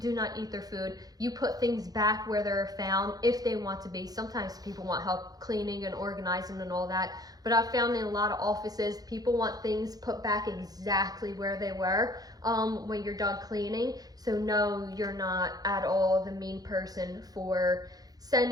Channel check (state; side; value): late; left; 0.18 ms